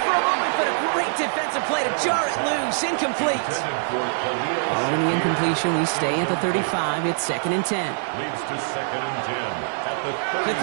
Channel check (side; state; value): left; silent; 63 dB below the other